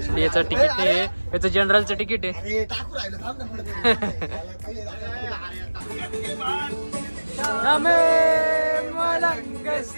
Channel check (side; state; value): both; inverted; correlation -1.00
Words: याचं तिकीट आहे, याचं जनरलचं तिकीट आहे।